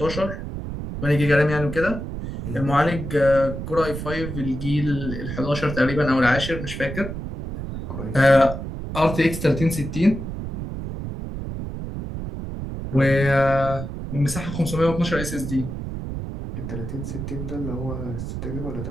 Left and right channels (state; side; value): noise; right; rumble, 7 dB below the sound